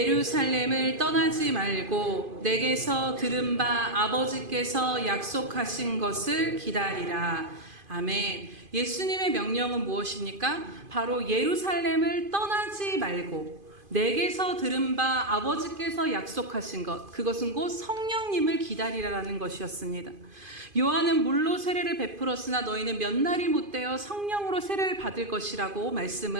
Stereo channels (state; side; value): late; left; 2.5 ms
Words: 떠나지 말고 내게서 들은 바 아버지께서 약속하신 것을 기다리라. 아멘. 예수님의 명령은 무엇입니까? 바로 예루살렘을 떠나지 말고 내게서 들은 바 아버지께서 약속하신 것, 그것은 곧 성령님을 기다리라라는 것이었습니다. 요한은 물로 세례를 베풀었으나 너희는 몇 날이 못되어 성령으로 세례를 받을 것이라고